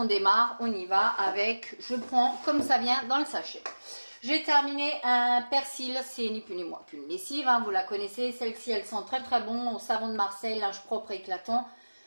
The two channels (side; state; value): both; inverted; correlation -1.00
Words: démarre, on y va avec, je prends comme ça vient dans le sachet. J'ai terminé un persil, c'est ni plus ni moins qu'une lessive, hein, vous la connaissez. Celle-ci, elle sent très très bon, au savon de Marseille, linge propre et éclatant.